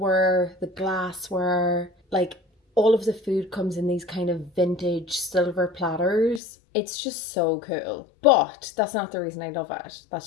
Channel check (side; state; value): right; drops out; at 6.4 s